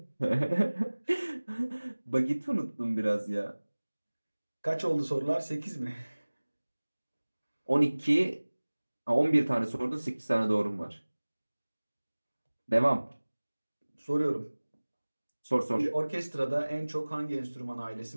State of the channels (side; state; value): both; inverted; correlation -1.00